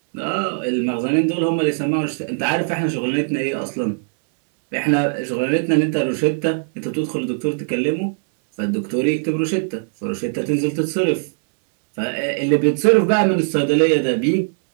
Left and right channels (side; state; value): left; silent; digital silence